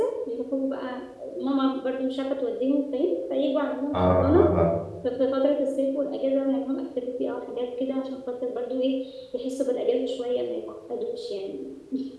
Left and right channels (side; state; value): both; identical; correlation 1.00